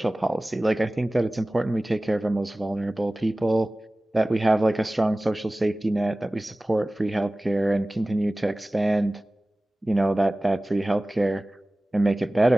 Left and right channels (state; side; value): normal; both; correlation 0.98